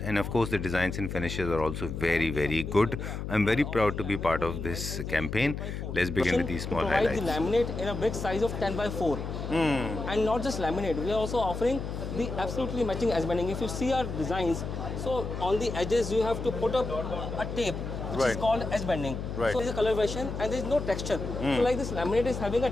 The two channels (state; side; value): noise; left; hum, 5 dB below the sound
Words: and of course the designs and finishes are also very very good. I am very proud to be part of this campaign. Let's begin with the small provide the highlights. laminate in a big size of 10 by 4. And not just laminate, we are also offering the absolutely matching edge banding. If you see our designs, so on the edges you have to put up a tape which is called edge banding. Right. So it's a color version and there is no texture. So like this laminate is having a